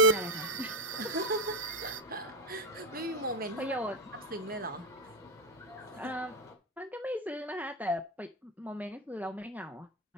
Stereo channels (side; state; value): both; normal; correlation 0.09